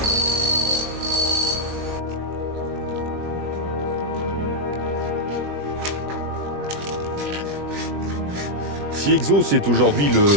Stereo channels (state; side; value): late; left; 20 ms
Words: Si Exos est aujourd'hui